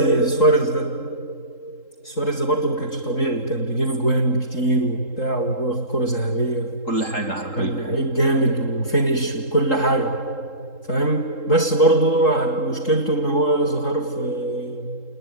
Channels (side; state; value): right; late; 3.8 ms